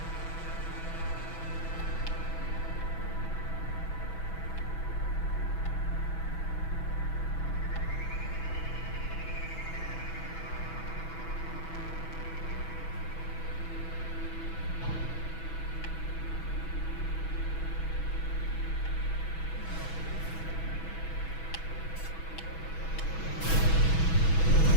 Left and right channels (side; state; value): right; late; 6.2 ms